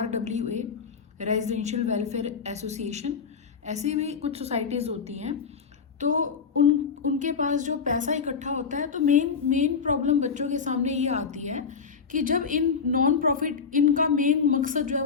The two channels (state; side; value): quieter; right; 5.8 dB